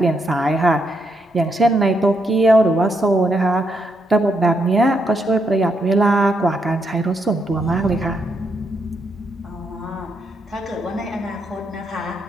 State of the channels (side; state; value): both; normal; correlation 0.79